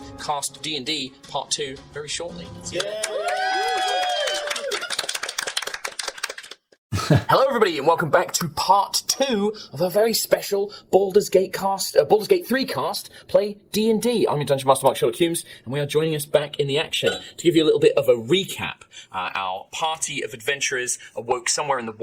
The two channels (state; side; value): identical; both; correlation 1.00